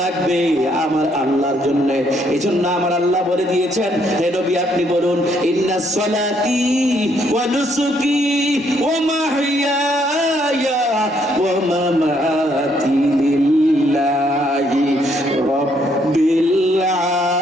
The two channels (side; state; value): both; normal; correlation 0.70